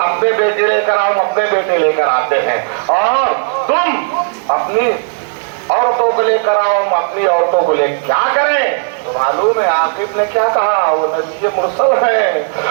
بیٹے لے کر آؤ ہم اپنے بیٹے لے کر آتے ہیں، اور تم اپنی عورتوں کو لے کر آؤ ہم اپنی عورتوں کو لے کیا کریں؟ تو معلوم ہے عاقب نے کیا کہا، وہ نبی مرسل ہے۔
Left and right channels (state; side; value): silent; left; digital silence